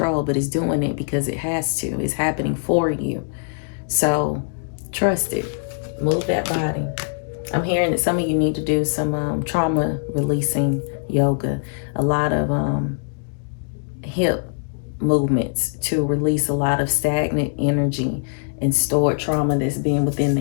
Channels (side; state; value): right; silent; digital silence